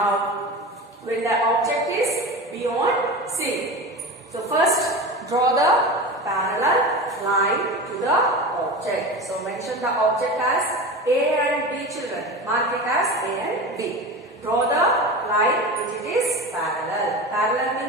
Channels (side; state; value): both; normal; correlation 0.29